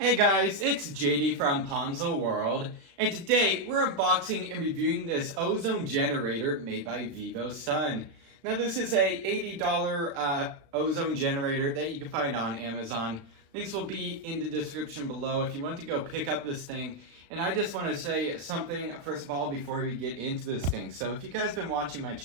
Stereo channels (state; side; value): late; left; 36 ms